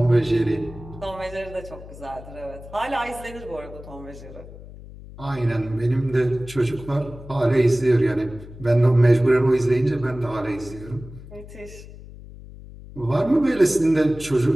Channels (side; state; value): left; noise; hum, 16 dB below the sound